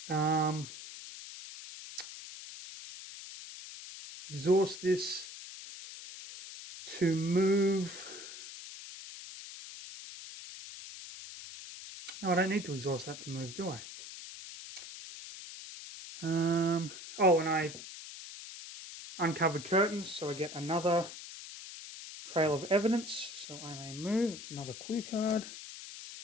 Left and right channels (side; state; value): left; noise; hiss, 12 dB below the sound